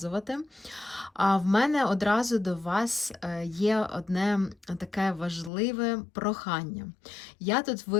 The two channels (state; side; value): drops out; right; at 5.5 s